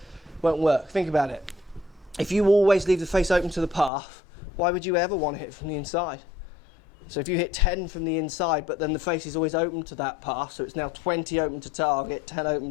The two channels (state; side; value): drops out; right; at 3.9 s